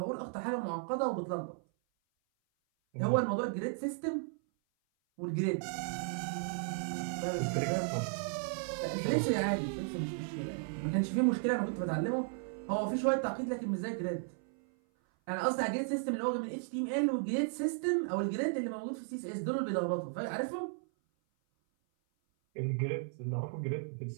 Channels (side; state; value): left; silent; 54 dB below the other